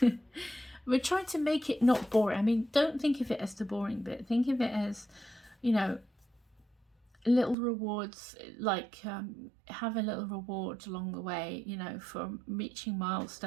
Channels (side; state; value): left; drops out; at 7.6 s